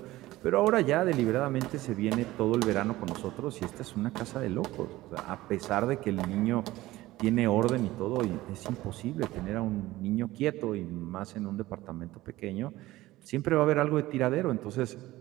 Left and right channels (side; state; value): left; quieter; 17.3 dB